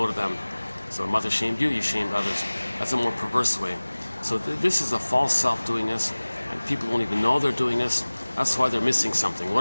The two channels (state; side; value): inverted; both; correlation -1.00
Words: to them. So mother shamed you, you shamed others. That's a more perverse way. So this is a false self doing this, and people won't even know they're doing this. That's why they're missing something.